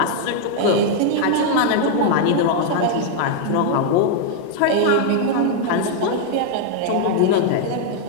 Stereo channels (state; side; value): different; both; correlation 0.00